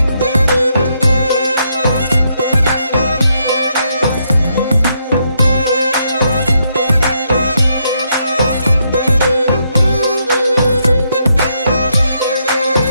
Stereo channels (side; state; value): both; inverted; correlation -0.78